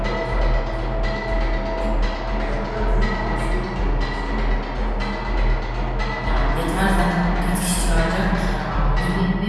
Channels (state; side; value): identical; both; correlation 1.00